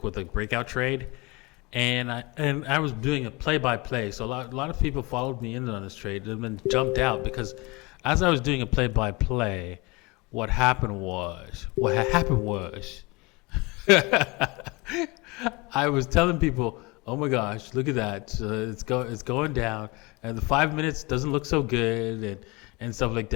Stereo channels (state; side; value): quieter; right; 25.2 dB